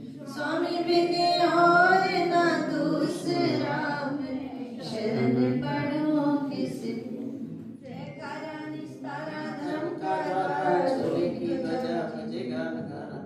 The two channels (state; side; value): identical; both; correlation 1.00